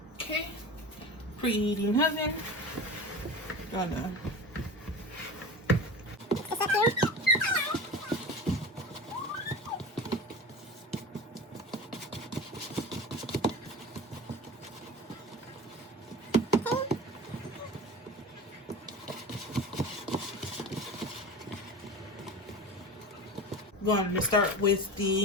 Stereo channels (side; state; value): both; normal; correlation 0.31